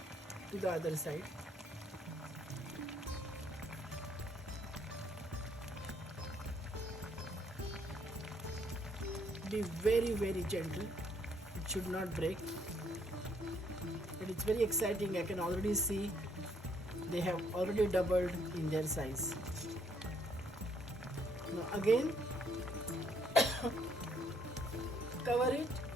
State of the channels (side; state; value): both; normal; correlation 0.68